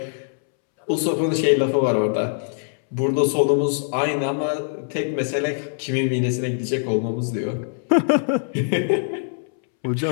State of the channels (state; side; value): silent; right; 64 dB below the other